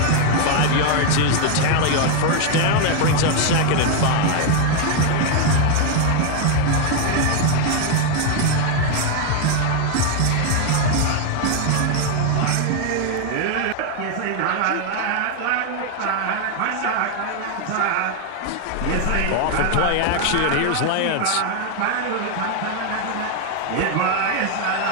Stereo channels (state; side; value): different; both; correlation 0.00